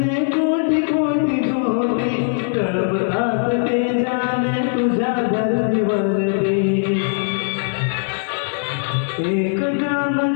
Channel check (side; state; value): right; silent; digital silence